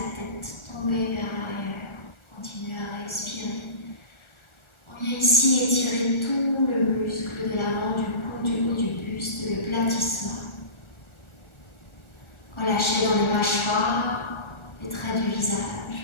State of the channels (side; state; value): right; late; 1.4 ms